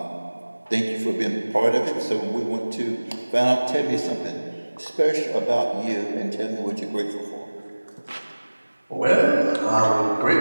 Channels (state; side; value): inverted; both; correlation -1.00